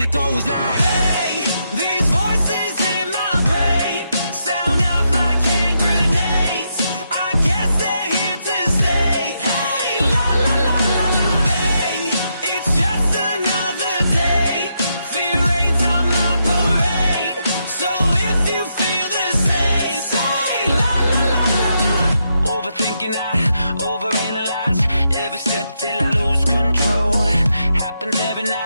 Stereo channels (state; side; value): inverted; both; correlation -0.81